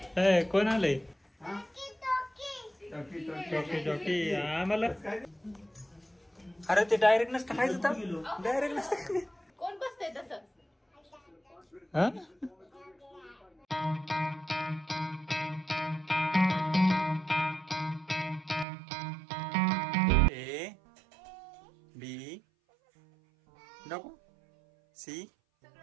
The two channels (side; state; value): left; drops out; at 18.7 s